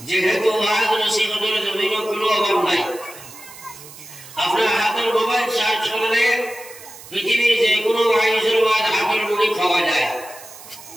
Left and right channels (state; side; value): noise; right; hiss, 17 dB below the sound